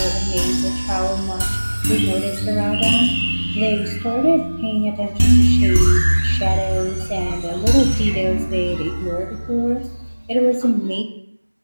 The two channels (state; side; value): inverted; both; correlation -1.00